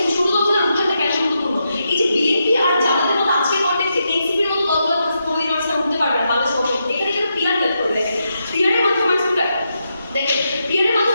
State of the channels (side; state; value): both; inverted; correlation -0.84